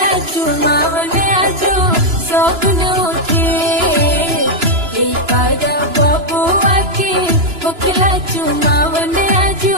चुमावन आजो सगुन उठे कर बबुआ के होखला चुमावन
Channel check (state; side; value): late; left; 2.9 ms